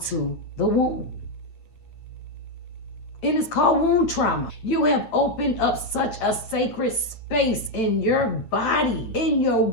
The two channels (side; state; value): right; late; 9.3 ms